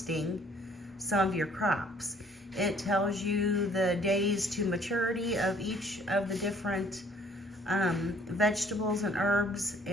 some of your crops. It tells you the days to maturity of each of the different vegetables and herbs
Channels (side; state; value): both; normal; correlation 0.59